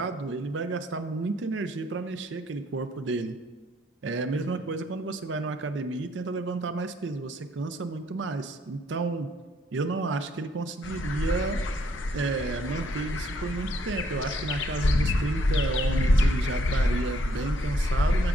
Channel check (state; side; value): normal; both; correlation 0.68